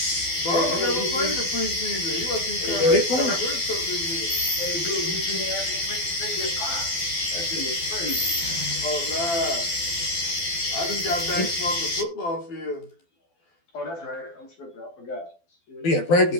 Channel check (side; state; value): right; late; 12 ms